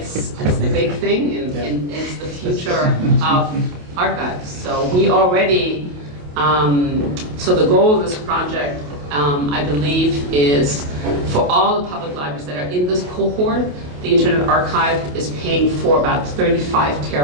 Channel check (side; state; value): left; late; 28 ms